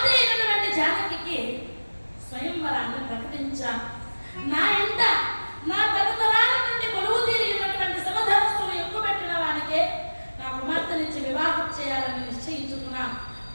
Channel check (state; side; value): inverted; both; correlation -1.00